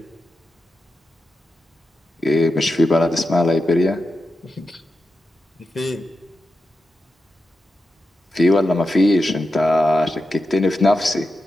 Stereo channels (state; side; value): normal; both; correlation 0.90